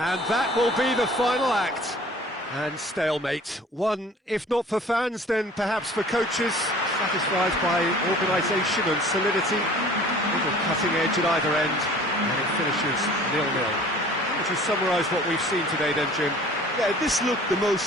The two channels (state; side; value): normal; both; correlation 0.48